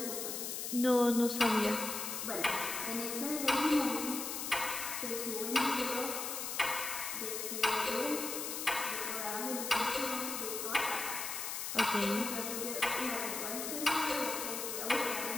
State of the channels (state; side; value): noise; left; hiss, 4 dB below the sound